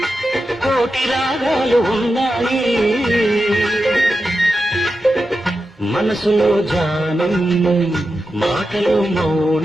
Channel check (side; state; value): both; normal; correlation 0.90